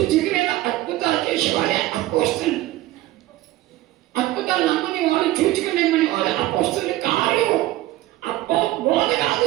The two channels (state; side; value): quieter; left; 16.4 dB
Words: అద్భుతాలు చేసేవాడే అపోస్తలు. అద్భుతాలు నమ్మని వాళ్ళు, చూచుకునేమని వాళ్ళు అపోస్తలు కాదు. బోధ